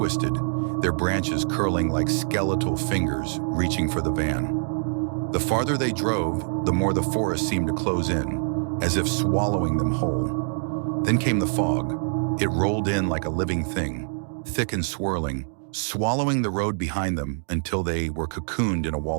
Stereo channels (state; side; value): silent; left; digital silence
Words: their branches curling like skeletal fingers reaching for the van. The farther they drove, the more the forest seemed to close in, as if swallowing them whole. Then came the fog. It rolled in like a living thing, thick and swirling, swallowing the road behind them until they were cocooned in a